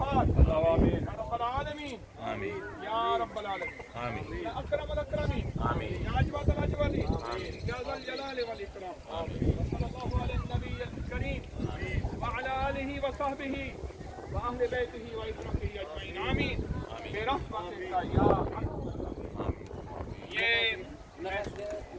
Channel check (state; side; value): identical; both; correlation 1.00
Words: يا رب العالمين يا رب العالمين يا أكرم الأكرمين يا أجود الأجودين يا ذا الجلال والإكرام وصلى الله على النبي الكريم وعلى آله وصحبه وأهل بيته وإخوته أجمعين آمين برحمتك يا أرحم یہ